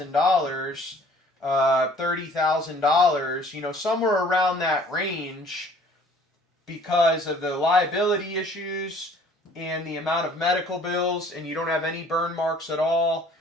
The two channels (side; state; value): both; normal; correlation 0.54